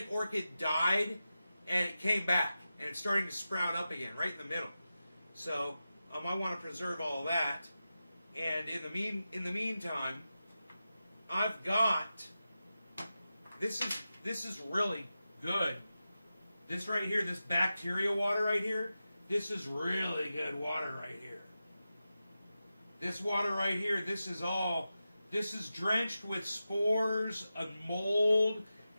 orchid died and it came back and it's starting to sprout up again right in the middle. So I want to preserve all of that. And in the meantime, I've got this is really good. This right here, this bacteria water right here, this is really good water right here. This water right here, this is drenched with spores of mold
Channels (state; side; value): inverted; both; correlation -0.92